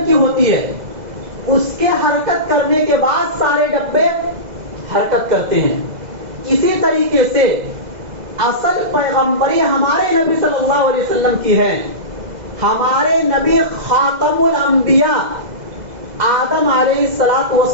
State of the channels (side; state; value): left; late; 2.0 ms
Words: کی ہوتی ہے. اس کے حرکت کرنے کے بعد سارے ڈبے حرکت کرتے ہیں. اسی طریقے سے اصل پیغمبری ہمارے نبی صلی اللہ علیہ وسلم کی ہے. ہمارے نبی خاتم الانبیاء آدم علیہ